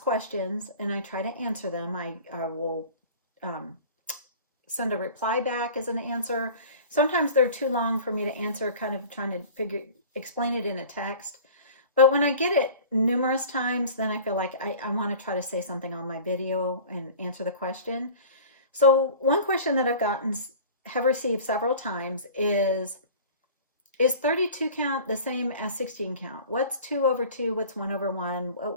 questions, and I try to answer them. I will send a reply back as an answer. Sometimes they're too long for me to answer, kind of trying to explain it in a text. But when I get it numerous times, then I feel like I want to try to say something on my video and answer the question. So one question that have received several times is 32 count the same as 16 count? What's 2 over 2? What's 1 over 1?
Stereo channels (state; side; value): inverted; both; correlation -0.42